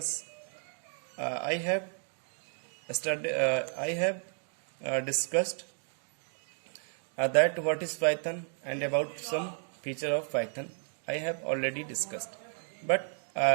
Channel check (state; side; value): silent; left; 56 dB below the other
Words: I have discussed that what is Python and about some feature of Python I have already discussed. But